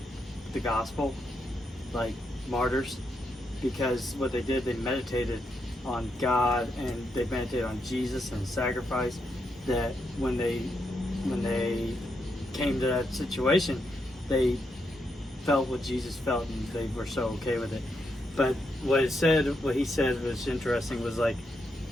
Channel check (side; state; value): both; normal; correlation 0.81